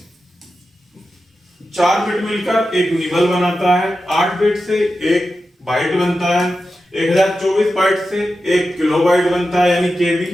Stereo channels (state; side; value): normal; both; correlation 0.91